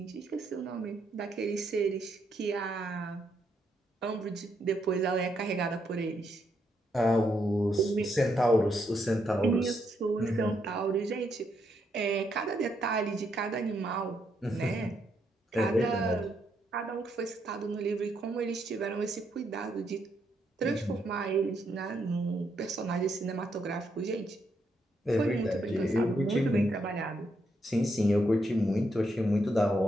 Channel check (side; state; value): both; normal; correlation 0.77